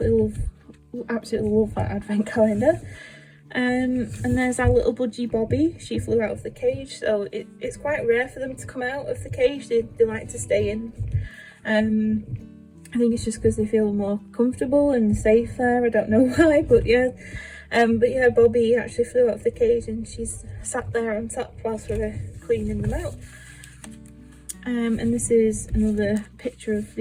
absolutely love that advent calendar. And there's our little budgie Bobby. She flew out of the cage, so it's quite rare for them to come out of the cage. They like to stay in. I think it's just because they feel more comfortable and safe there. I don't know why, but yeah. Bobby actually flew out of the cage and she's sat there on top whilst we were cleaning them out. And this is another picture of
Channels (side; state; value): both; identical; correlation 1.00